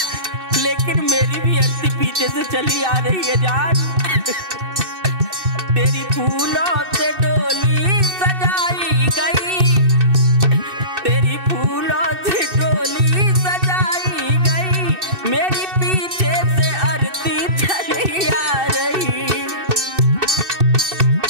लेकिन मेरी भी आरती पीछे से चली आ रही है जान। तेरी फूलों से डोली सजाई गई, तेरी फूलों से डोली सजाई गई, मेरी पीछे से आरती चली आ रही।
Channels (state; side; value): late; left; 2.6 ms